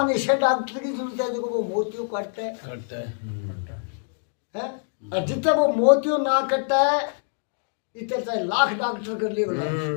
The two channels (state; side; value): silent; right; 62 dB below the other